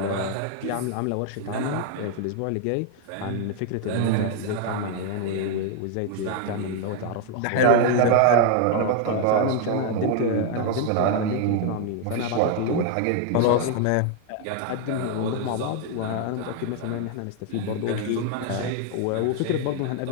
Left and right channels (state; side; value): different; both; correlation 0.00